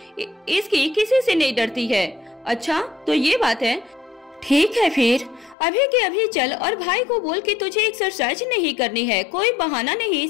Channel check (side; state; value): right; drops out; at 5.6 s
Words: इसकी किसी से नहीं डरती है। अच्छा तो ये बात है, ठीक है फिर अभी के अभी चल और भाई को बोल कि तुझे एक्सरसाइज नहीं करनी है। कोई बहाना नहीं,